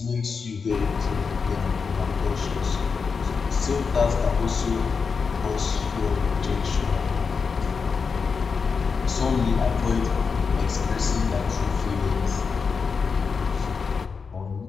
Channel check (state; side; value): quieter; right; 5.3 dB